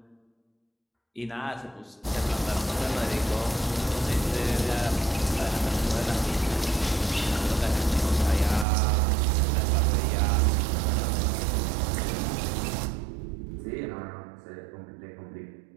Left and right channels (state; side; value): drops out; left; at 8.7 s